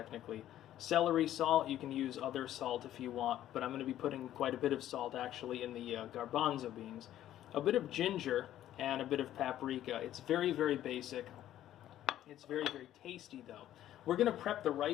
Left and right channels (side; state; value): right; quieter; 12.4 dB